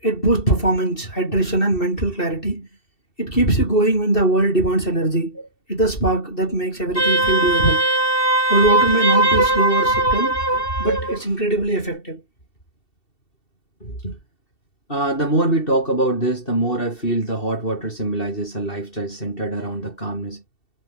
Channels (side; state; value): right; late; 2.7 ms